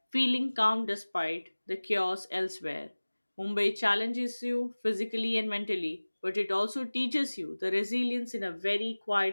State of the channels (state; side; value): inverted; both; correlation -1.00